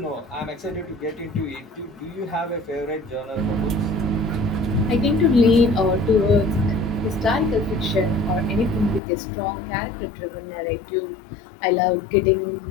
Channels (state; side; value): drops out; right; at 9.0 s